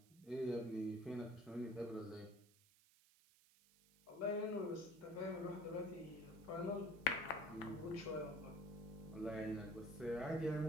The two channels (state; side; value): noise; right; hiss, 27 dB below the sound